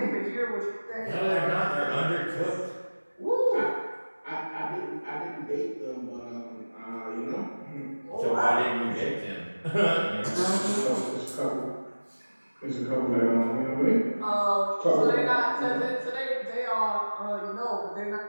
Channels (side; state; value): both; inverted; correlation -1.00